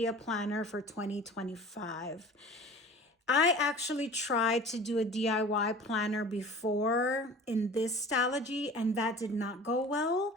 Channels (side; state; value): both; normal; correlation 0.42